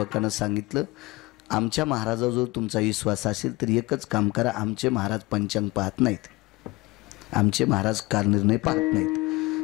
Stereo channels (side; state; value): right; quieter; 22.2 dB